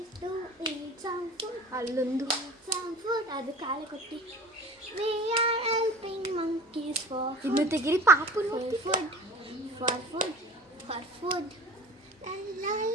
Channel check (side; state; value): both; normal; correlation 0.41